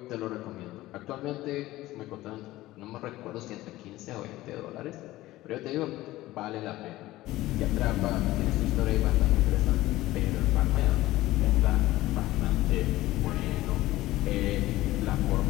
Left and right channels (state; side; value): quieter; right; 16.9 dB